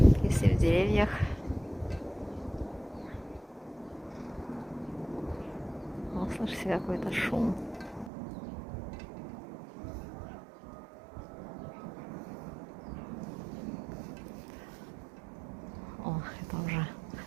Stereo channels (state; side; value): drops out; left; at 8.1 s